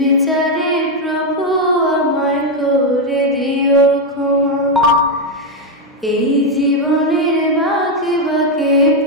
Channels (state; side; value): normal; both; correlation 0.04